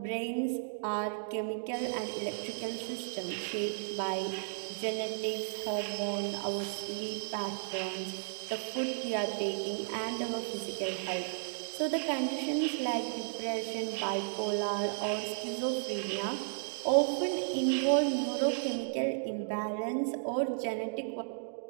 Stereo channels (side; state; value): left; silent; digital silence